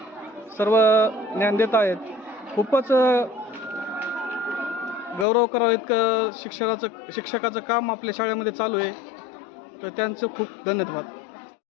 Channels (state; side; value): drops out; right; at 5.2 s